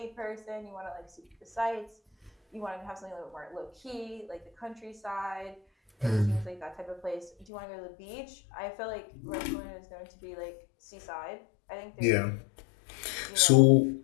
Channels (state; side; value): drops out; right; at 7.5 s